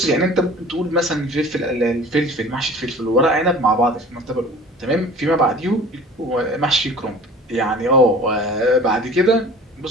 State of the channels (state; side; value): normal; both; correlation 0.44